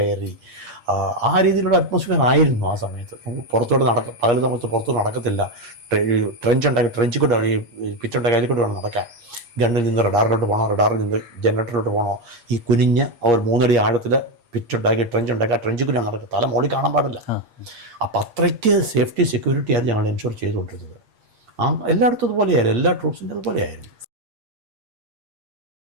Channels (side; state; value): left; late; 8.5 ms